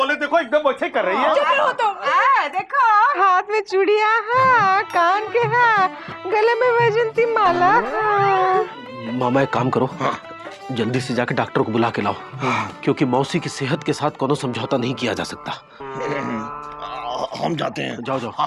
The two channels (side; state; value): both; identical; correlation 1.00